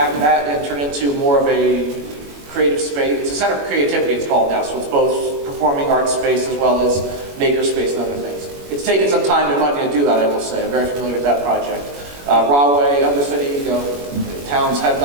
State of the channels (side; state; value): left; late; 21 ms